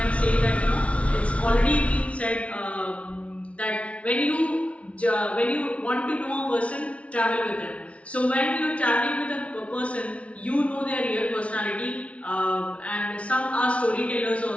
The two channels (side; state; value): right; late; 0.063 ms